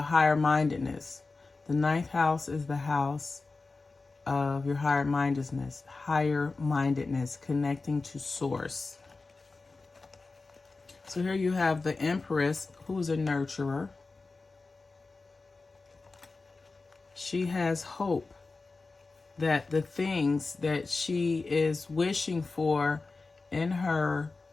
higher mindedness. The ninth house is the house of your higher mindedness, connecting to source. So here you have the Empress, who's a nurturer. She has hope that the things that she is wishing for in her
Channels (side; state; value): right; quieter; 3.8 dB